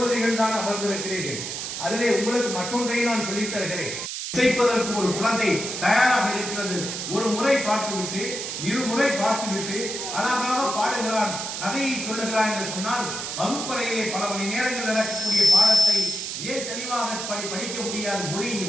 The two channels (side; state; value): right; noise; hiss, 5 dB below the sound